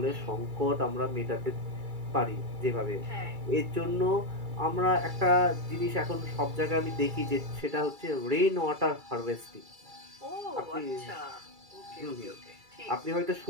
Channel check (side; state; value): left; late; 2.3 ms